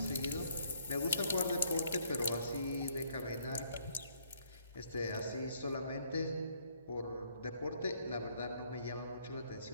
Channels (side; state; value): both; inverted; correlation -0.67